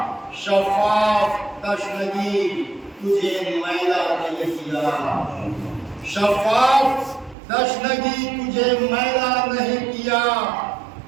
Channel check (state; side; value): drops out; left; at 7.4 s